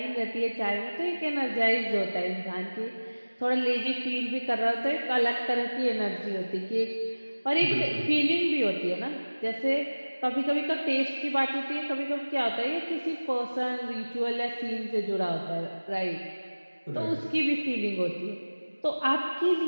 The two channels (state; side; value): inverted; both; correlation -1.00